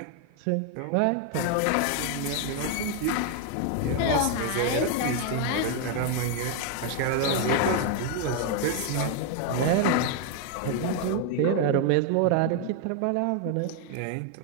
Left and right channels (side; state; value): both; different; correlation 0.00